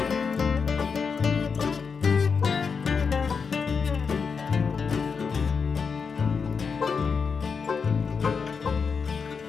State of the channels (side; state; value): right; quieter; 5.6 dB